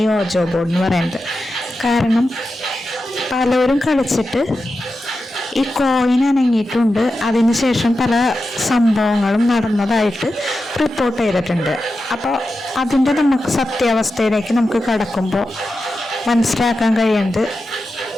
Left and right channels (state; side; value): normal; both; correlation 0.91